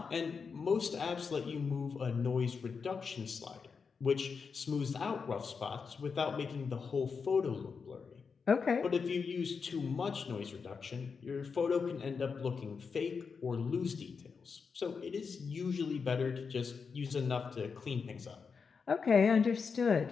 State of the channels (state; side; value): quieter; right; 5.5 dB